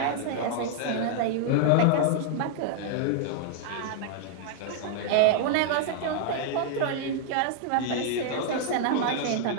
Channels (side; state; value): both; different; correlation -0.01